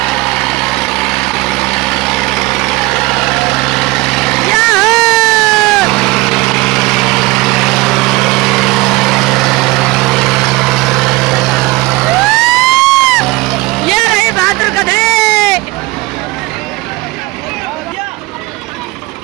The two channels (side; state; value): left; quieter; 21.7 dB